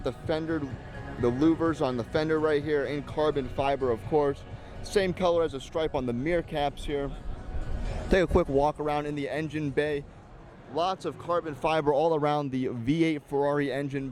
the fender, the louvers on the fender right here in carbon fiber, of course. Same color as a stripe on the mirror caps here. Take a quick walk around in the engine bay. Lots of carbon fiber all around the V8 Ferrari engine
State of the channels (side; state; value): both; identical; correlation 1.00